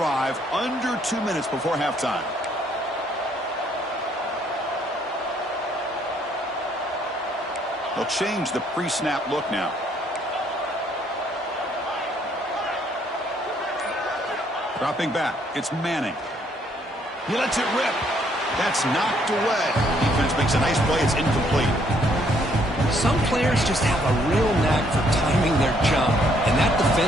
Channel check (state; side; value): normal; both; correlation 0.68